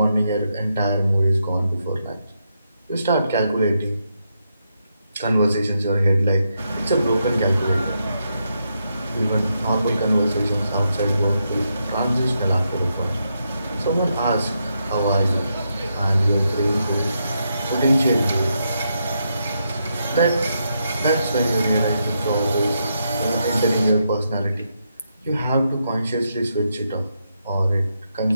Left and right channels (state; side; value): inverted; both; correlation -0.82